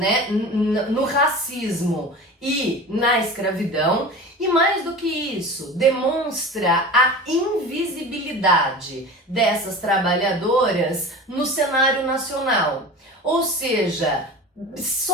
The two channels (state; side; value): normal; both; correlation 0.34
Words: no racismo e na escravidão, e mais do que isso, demonstra a invisibilidade dessas trabalhadoras no cenário nacional. Ou seja,